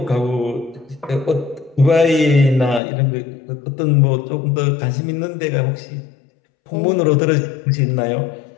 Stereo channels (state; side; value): drops out; right; at 2.8 s